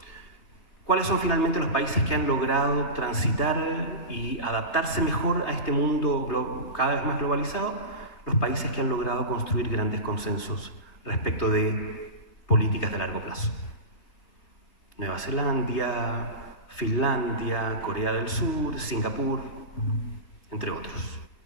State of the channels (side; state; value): right; late; 3.3 ms